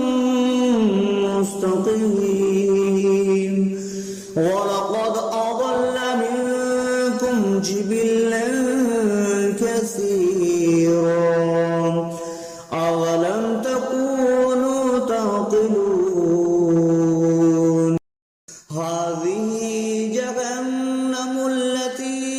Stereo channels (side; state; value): both; identical; correlation 1.00